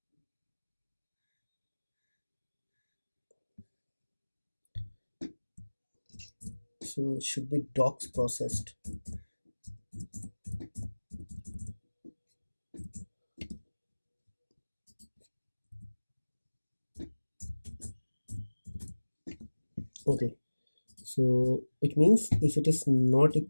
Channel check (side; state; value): both; inverted; correlation -1.00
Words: So it should be docs processed. Okay, so it means if it is not